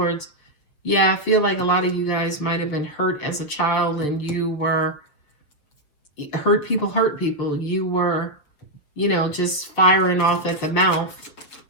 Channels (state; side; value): late; right; 6.9 ms